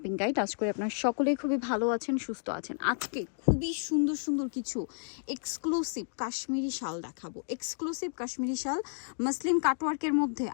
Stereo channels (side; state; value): right; silent; digital silence